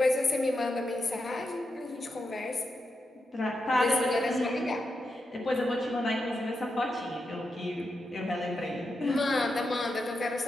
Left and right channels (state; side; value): normal; both; correlation 0.87